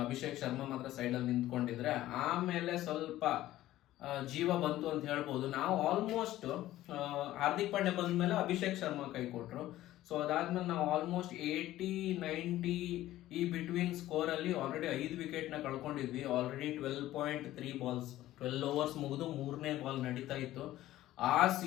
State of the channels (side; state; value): right; quieter; 14.8 dB